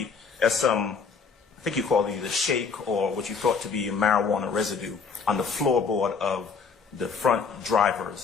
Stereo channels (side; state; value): right; quieter; 5.4 dB